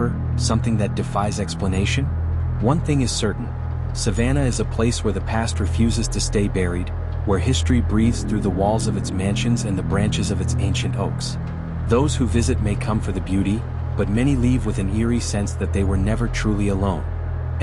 something that defies explanation? One thing is certain, Savannah is a place where the past refuses to stay buried, where history breathes through the walls of its mansions and the branches of its ancient oaks. Those who visit may come for the beauty, but many leave with an eerie sense that they were never truly alone.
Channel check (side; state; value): both; identical; correlation 1.00